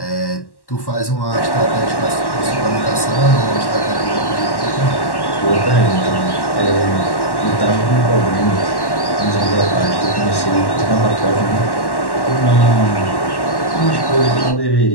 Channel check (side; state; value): right; late; 1.1 ms